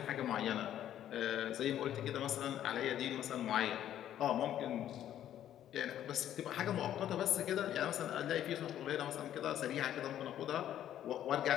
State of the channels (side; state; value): right; quieter; 11.3 dB